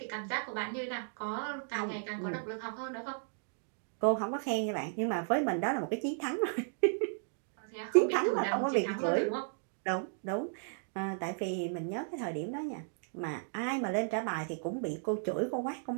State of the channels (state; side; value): silent; left; digital silence